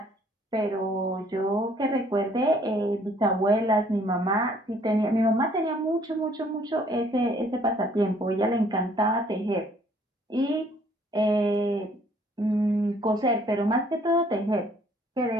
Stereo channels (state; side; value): normal; both; correlation 0.61